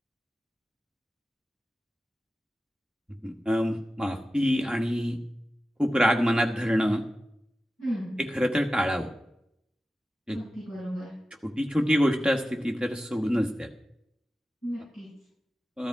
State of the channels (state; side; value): normal; both; correlation 0.94